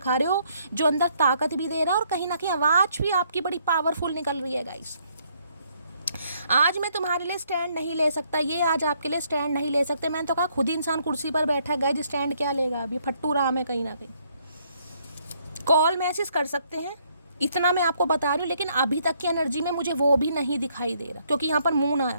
रहे हो जो अंदर ताकत भी दे रहा है और कहीं ना कहीं आवाज़ भी आपकी बड़ी पावरफुल निकल रही है। गाइस आज मैं तुम्हारे लिए स्टैंड नहीं ले सकता, ये आज आपके लिए स्टैंड नहीं ले सकते। मैंने तो कहा खुद ही इंसान कुर्सी पर बैठा है, गाइस स्टैंड क्या लेगा? अभी फट्टू राम है कहीं ना कहीं। कॉल मैसेज कर सकते हैं, इतना मैं आपको बता रही हूँ, लेकिन अभी तक की एनर्जी में मुझे वो भी नहीं दिखाई दे रहा, क्योंकि यहाँ पर मून आया,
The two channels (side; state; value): both; inverted; correlation -0.70